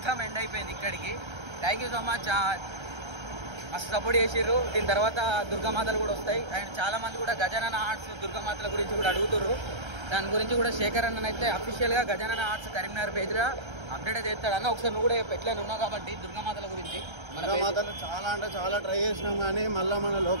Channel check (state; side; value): late; left; 1.3 ms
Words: ఎండ్ అయిపోయింది ఇక్కడికి. థ్యాంక్ యూ సో మచ్, మస్తు సపోర్ట్ చేసిర్రు. దీని తర్వాత దుర్గామాతలు కూడా వస్తాయి. అండ్ చాలా మంది కూడా గజానన ఆర్ట్స్ దుర్గామాతల గురించి కూడా అడుగుతుర్రు. దాని గురించి కూడా శేఖర్ అన్న అయితే అఫీషియల్ గా గజానన ఆర్ట్స్ కరీంనగర్ పేజ్ లో అప్డేట్ అయితే చేస్తాడు అన్న. ఒకసారి నువ్వు కూడా ఎట్లా ఉన్నావు కాబట్టి దుర్గామాతల గురించి. దుర్గామాతలు చాలా అంటే చాలా ట్రై చేసినాం, కానీ మళ్ళీ మన